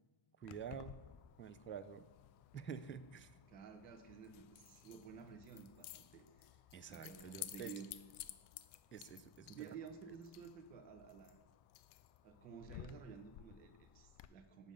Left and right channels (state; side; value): late; right; 1.6 ms